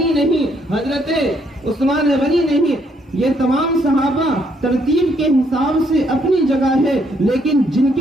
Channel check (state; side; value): normal; both; correlation 0.71